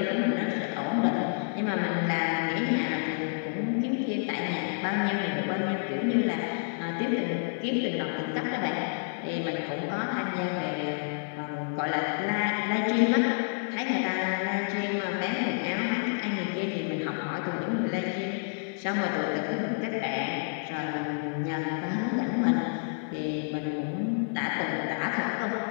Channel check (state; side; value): silent; right; 58 dB below the other